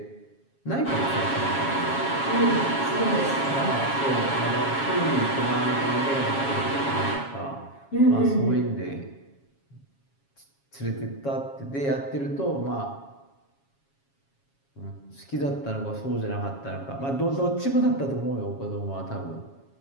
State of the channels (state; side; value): late; right; 7.3 ms